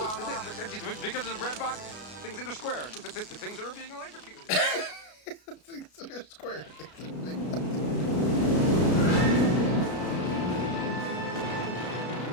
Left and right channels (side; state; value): right; late; 33 ms